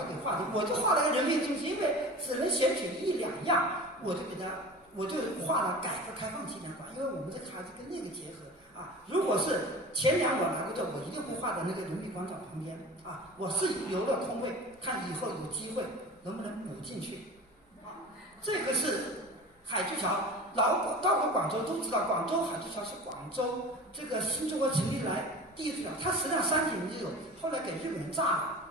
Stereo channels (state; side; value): normal; both; correlation 0.36